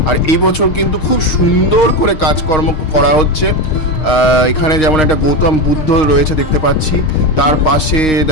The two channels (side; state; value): right; late; 6.4 ms